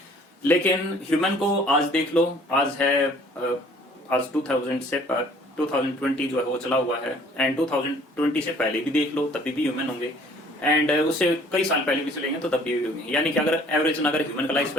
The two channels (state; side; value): normal; both; correlation 0.55